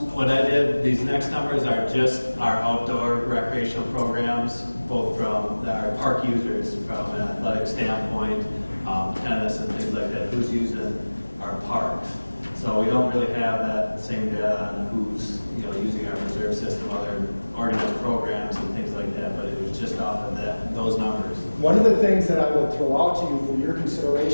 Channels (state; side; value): inverted; both; correlation -1.00